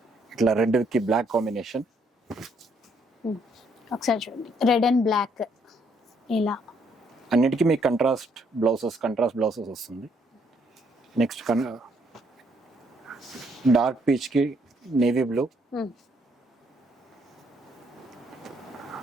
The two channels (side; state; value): both; normal; correlation 0.70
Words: ఇట్లా రెడ్ కి బ్లాక్ కాంబినేషన్. ఒకసారి చూడండి, రెడ్ అండ్ బ్లాక్ ఇలా. అన్నిటికీ మీకు కంట్రాస్ట్ బ్లౌజెస్ వస్తుంది. నెక్స్ట్ డార్క్ పీచ్ కి నేవీ బ్లూ,